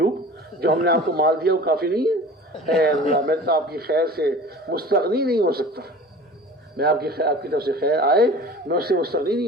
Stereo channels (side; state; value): both; normal; correlation 0.40